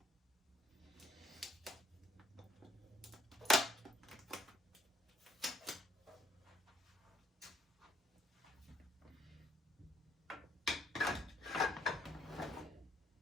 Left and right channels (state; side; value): normal; both; correlation 0.67